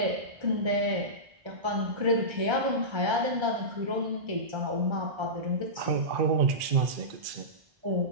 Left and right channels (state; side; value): late; left; 1.3 ms